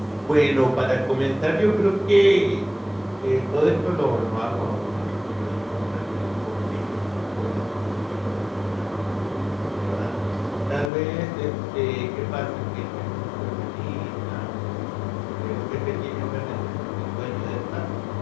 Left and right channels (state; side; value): drops out; right; at 10.9 s